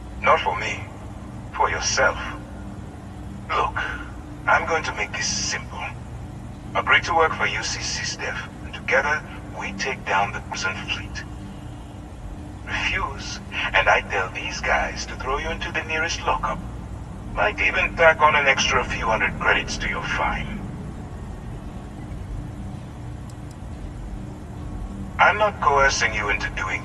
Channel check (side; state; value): both; identical; correlation 1.00